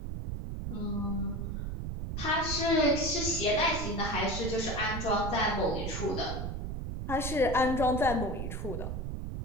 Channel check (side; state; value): right; noise; rumble, 4 dB below the sound